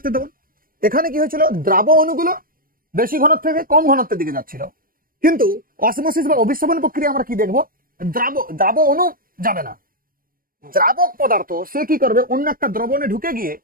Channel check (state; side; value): late; left; 0.41 ms